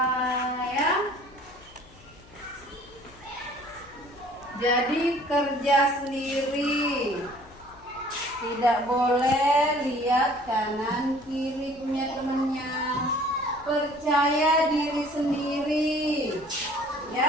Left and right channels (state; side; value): noise; left; hum, 24 dB below the sound